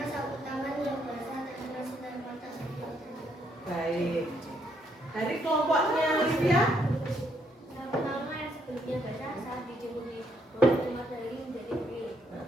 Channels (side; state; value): both; normal; correlation 0.72